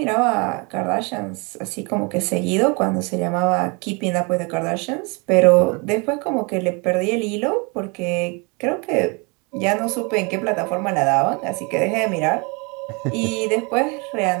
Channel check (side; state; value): left; quieter; 30.6 dB